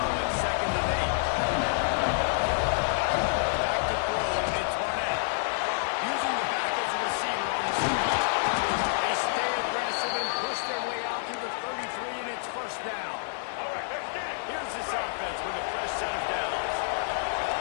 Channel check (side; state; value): right; silent; 59 dB below the other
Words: at 2nd and 8. Back to throw. It's Barnett. Using the back as a receiver on the side. They stay aggressive and push their way out through the 33, and it's first down. Here's this offense with a fresh set of downs.